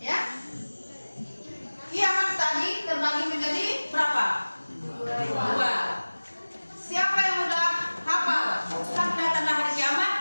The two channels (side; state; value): both; inverted; correlation -1.00